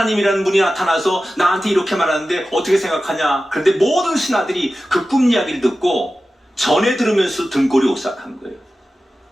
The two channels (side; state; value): both; normal; correlation 0.94